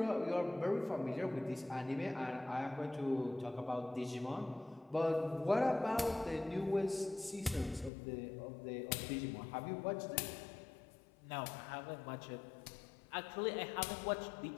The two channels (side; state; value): right; drops out; at 7.9 s